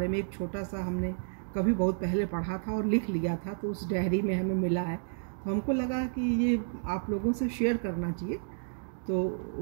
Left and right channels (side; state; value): left; silent; digital silence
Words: में एक छोटा सा हमने कभी बहुत पहले पढ़ा था और लिख लिया था। तो उस डायरी में हमें मिला है, तो हमको लगा कि ये आप लोगों से शेयर करना चाहिए। तो